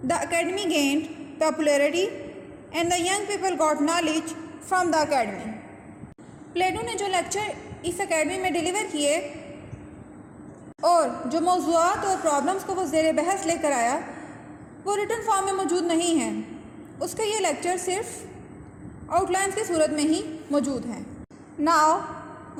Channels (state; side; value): identical; both; correlation 1.00